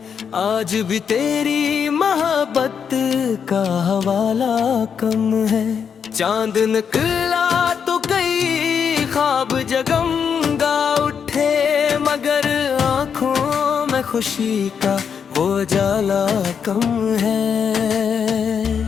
आज भी तेरी मोहब्बत का हवाला कम है। चांद निकला तो कई ख्वाब जगमगा उठे, मगर आंखों में खुशी का वो जाला कम है।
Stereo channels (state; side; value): quieter; right; 7.0 dB